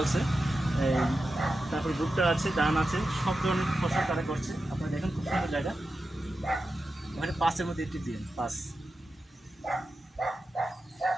তারপরে ভুট্টা আছে, ধান আছে, সব ধরনের ফসল তারা করছে। আপনারা দেখেন খুব সুন্দর জায়গা। ওখানে 5-এর মধ্যে একটি দিন 5।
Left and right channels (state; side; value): normal; both; correlation 0.91